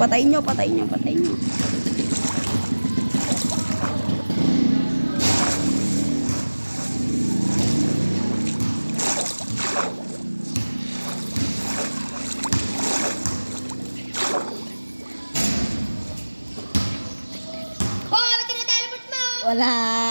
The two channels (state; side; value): inverted; both; correlation -1.00